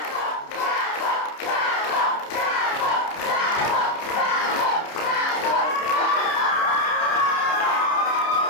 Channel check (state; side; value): late; right; 30 ms